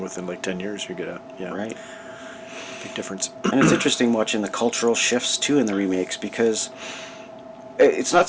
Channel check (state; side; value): identical; both; correlation 1.00